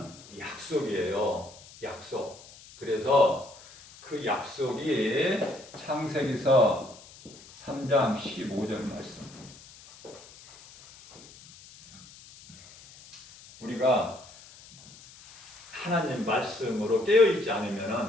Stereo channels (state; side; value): noise; left; hiss, 21 dB below the sound